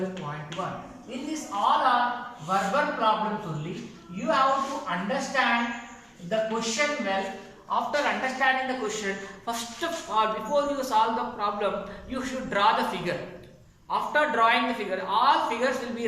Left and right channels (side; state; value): both; identical; correlation 1.00